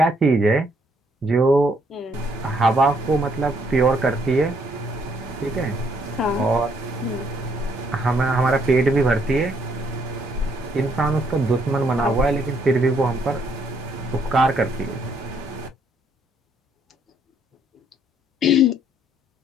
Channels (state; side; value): normal; both; correlation 0.69